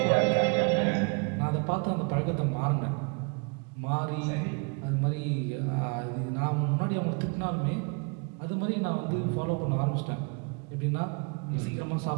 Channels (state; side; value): quieter; left; 33.8 dB